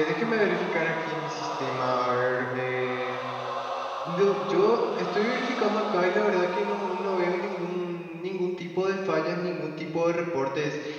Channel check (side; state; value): both; identical; correlation 1.00